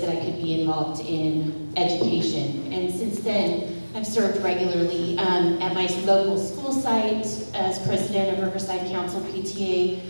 that I could be involved in education. And since then, I've served regularly at my local school site as president of Riverside Council PTA,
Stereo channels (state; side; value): inverted; both; correlation -1.00